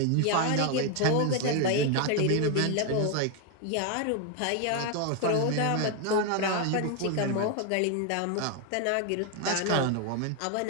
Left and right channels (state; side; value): different; both; correlation 0.01